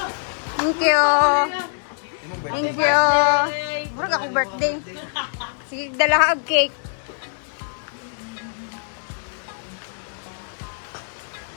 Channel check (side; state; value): right; silent; digital silence